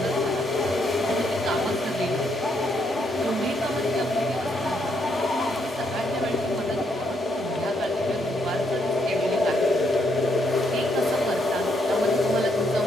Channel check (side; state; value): both; normal; correlation 0.75